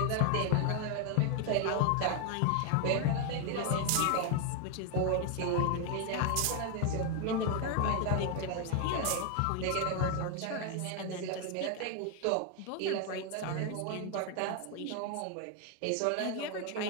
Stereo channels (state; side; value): different; both; correlation 0.01